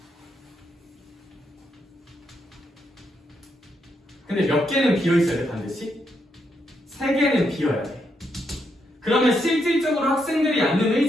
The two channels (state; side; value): normal; both; correlation 0.79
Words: 근데 몇 개는 비어있어야 돼 반드시? 3개는 비어야 돼. 그러면 실질적으로 학생들이 앉는